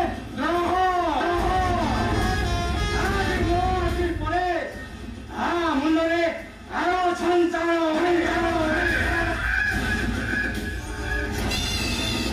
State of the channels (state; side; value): identical; both; correlation 1.00